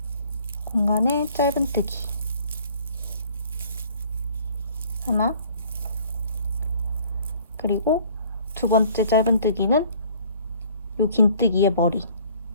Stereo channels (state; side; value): inverted; both; correlation -0.55